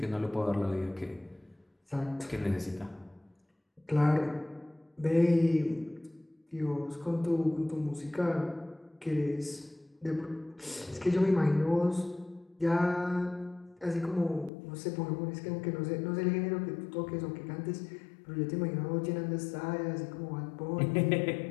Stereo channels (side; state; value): right; drops out; at 14.5 s